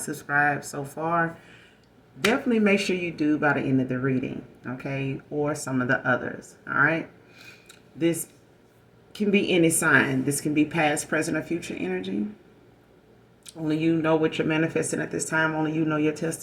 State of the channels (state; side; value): identical; both; correlation 1.00